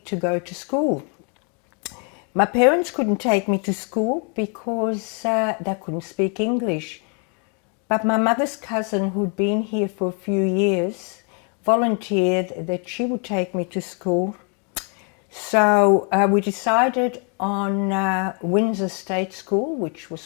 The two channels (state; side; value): quieter; right; 39.1 dB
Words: to go to school. My parents couldn't take me to school because they couldn't speak English. But my mother's cousin, who'd been here for a few years, volunteered that she would take me to school. So we decided on Windsor State School, which